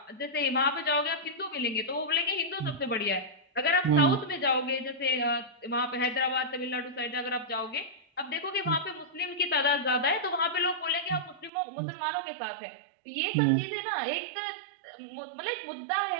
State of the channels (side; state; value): left; drops out; at 11.5 s